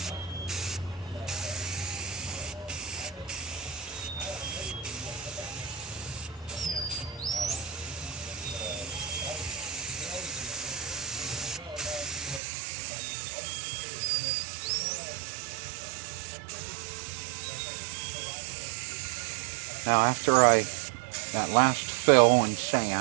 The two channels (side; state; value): left; drops out; at 12.4 s